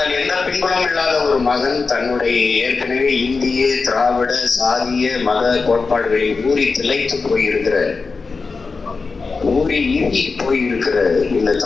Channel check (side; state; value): right; quieter; 4.4 dB